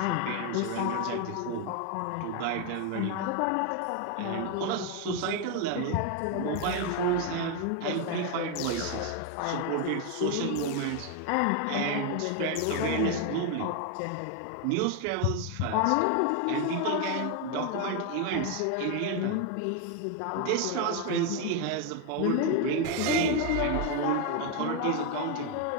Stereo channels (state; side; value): different; both; correlation 0.01